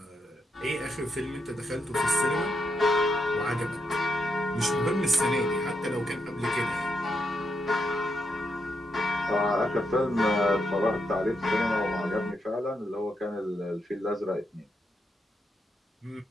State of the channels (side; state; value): both; normal; correlation 0.81